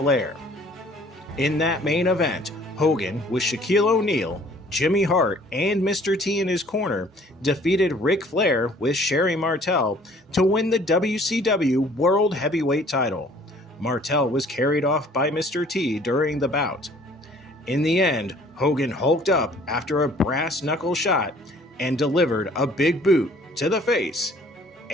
In that main event, Hogan, with Shaquille O'Neal, Jimmy Hart, and Mr. T in his corner, defeated Ric Flair with Sherry Martel to win the WCW World Heavyweight title. Martel was carried off by Mr. T during the bout. In the end, Hogan hulked up after a brass knuckle shot and delivered a big boot to the face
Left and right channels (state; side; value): normal; both; correlation 0.55